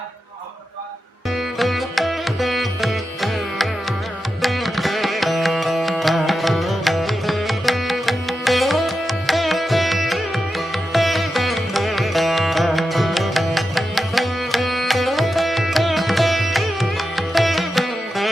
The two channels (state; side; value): normal; both; correlation 0.90